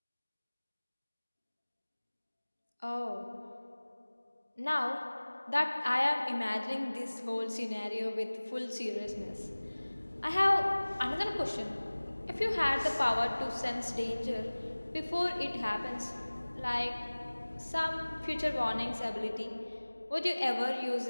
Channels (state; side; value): inverted; both; correlation -1.00